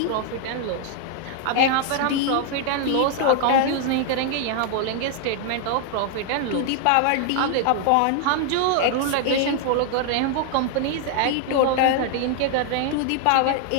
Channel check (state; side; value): different; both; correlation 0.00